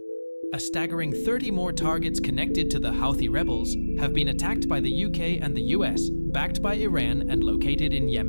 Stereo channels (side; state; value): both; inverted; correlation -1.00